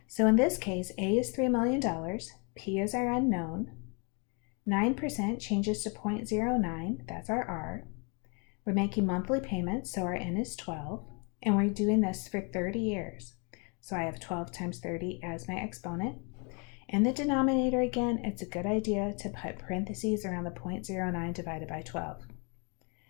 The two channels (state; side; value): quieter; right; 34.4 dB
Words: So in this case, A is $3 million, P is our unknown, 9% changes to 0.09, that's our R. We're making monthly payments, so our N is 12, and we're doing this for 30 years. So I have 12 times 30 as my exponent. In the denominator again, it's a good idea to put parentheses around the 0.09 divided by 12.